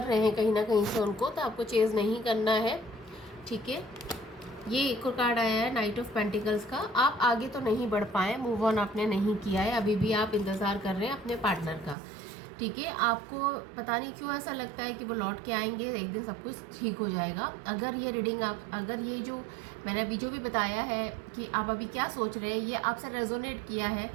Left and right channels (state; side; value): drops out; left; at 12.0 s